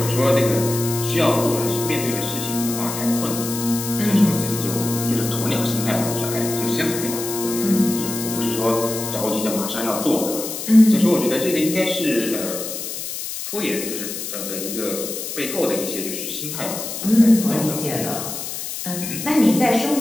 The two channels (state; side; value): noise; left; hiss, 6 dB below the sound